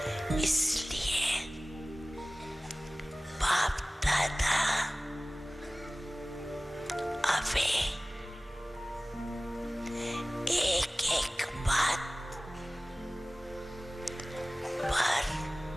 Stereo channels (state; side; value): normal; both; correlation 0.98